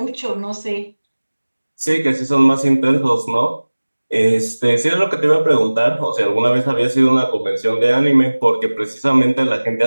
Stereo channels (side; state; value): both; inverted; correlation -1.00